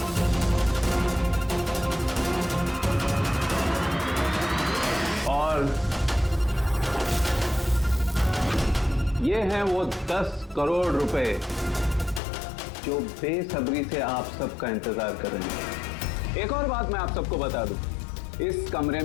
और ये हैं वो 10 करोड़ रुपए जो बेसब्री से आप सबका इंतजार कर रहे हैं। एक और बात मैं आप सबको बता दूं, इस कमरे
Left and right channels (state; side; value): drops out; right; at 12.2 s